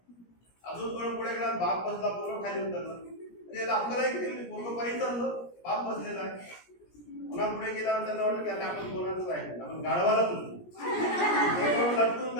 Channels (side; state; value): right; late; 17 ms